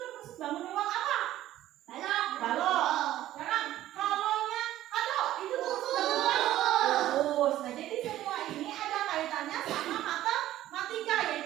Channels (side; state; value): left; quieter; 13.8 dB